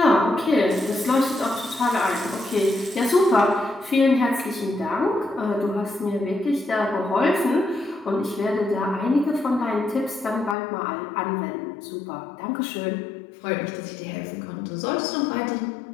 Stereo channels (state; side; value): drops out; right; at 10.6 s